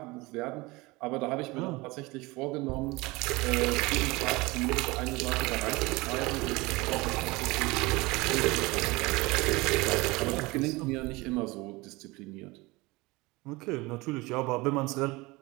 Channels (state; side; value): quieter; left; 22.9 dB